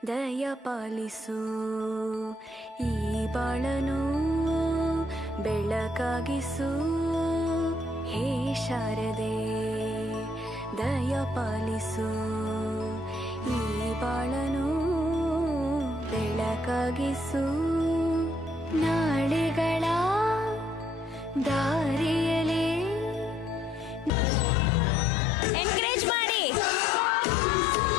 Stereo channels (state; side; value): normal; both; correlation 0.67